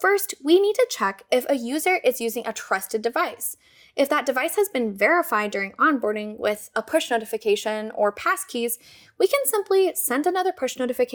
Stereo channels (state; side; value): identical; both; correlation 1.00